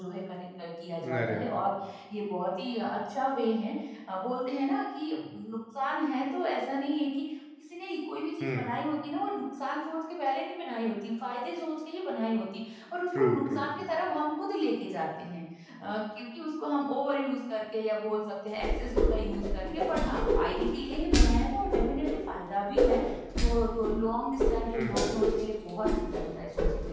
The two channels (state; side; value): identical; both; correlation 1.00